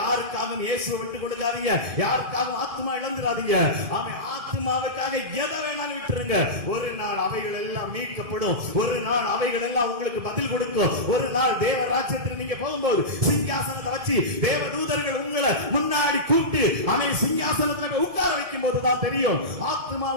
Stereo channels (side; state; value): left; late; 1.7 ms